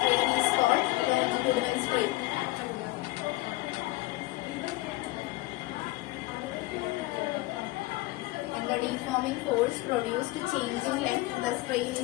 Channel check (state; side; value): quieter; right; 20.3 dB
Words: is called longitudinal strain. When the deforming force produced a change in length, the strain